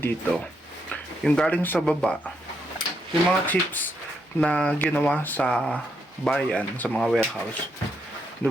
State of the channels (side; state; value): both; normal; correlation 0.78